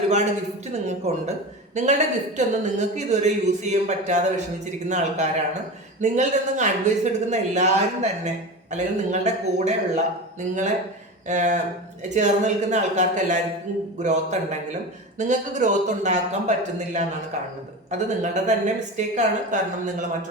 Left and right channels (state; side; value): normal; both; correlation 0.27